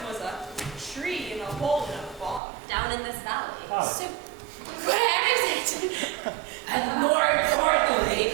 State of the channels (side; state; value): left; drops out; at 2.4 s